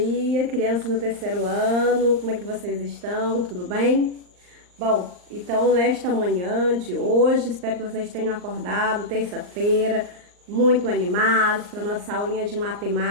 crianças do terceiro ano, como é que vocês estão? Tudo bem? Bom, então nesta manhã de hoje, espero que vocês tenham acordado, terça-feira, muito animados para nossa aulinha de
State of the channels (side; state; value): left; late; 39 ms